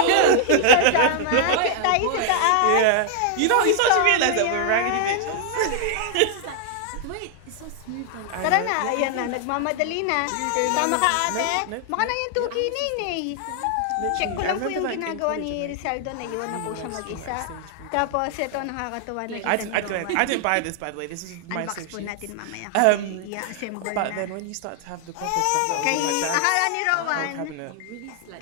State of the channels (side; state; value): both; different; correlation 0.00